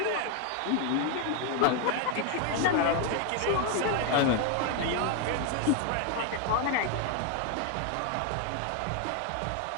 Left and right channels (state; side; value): different; both; correlation 0.01